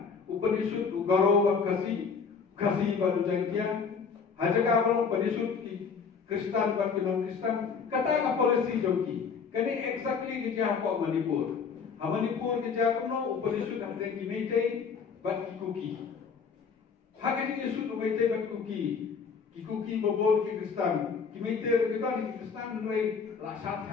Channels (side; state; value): right; quieter; 5.8 dB